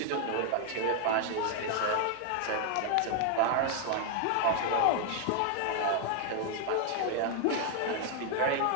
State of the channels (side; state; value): both; different; correlation 0.00